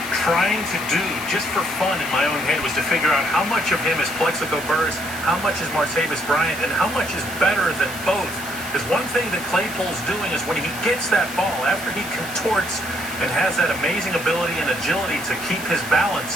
trying to do just for fun in my own head was to figure out how much of him is Plexico Burress, how much is Martavis Bryant, and how much is better than both. Because one thing that Claypool's doing is when he gets that ball, after he contorts and has that amazing ability and agility to keep his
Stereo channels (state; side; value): noise; left; hiss, 12 dB below the sound